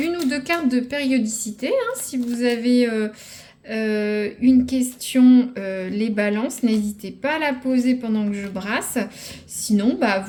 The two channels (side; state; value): both; identical; correlation 1.00